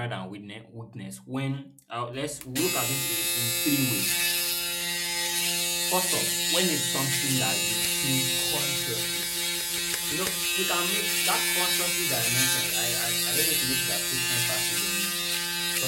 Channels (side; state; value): both; identical; correlation 1.00